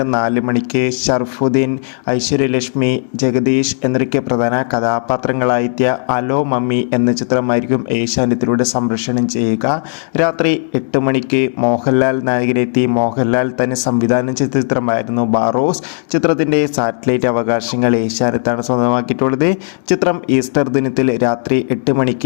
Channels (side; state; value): right; silent; digital silence